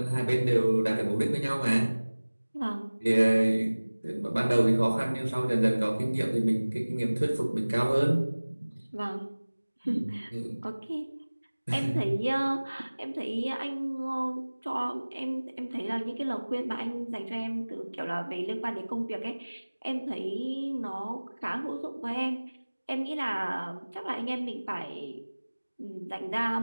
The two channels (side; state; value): both; inverted; correlation -1.00